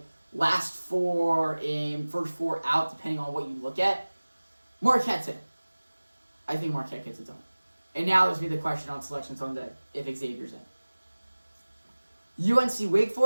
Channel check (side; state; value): both; inverted; correlation -1.00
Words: last four in, first four out, depending on what you look at. Marquette's in. I think Marquette gets it done. And now there's me the question on Selection Sunday if Xavier's in. UNC Wake